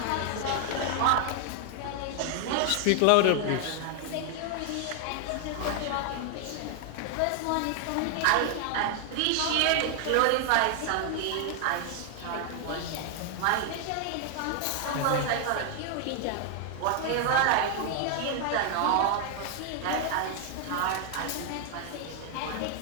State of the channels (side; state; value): both; different; correlation 0.00